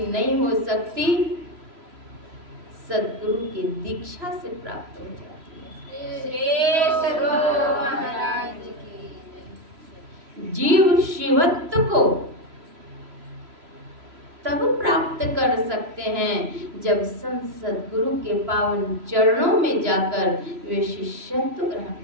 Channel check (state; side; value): late; left; 3.0 ms